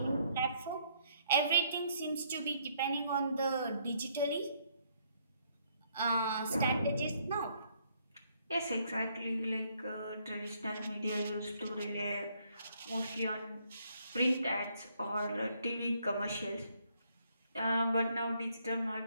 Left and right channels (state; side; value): inverted; both; correlation -0.70